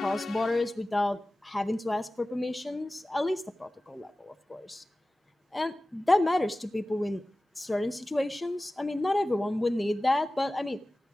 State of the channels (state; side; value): normal; both; correlation 0.96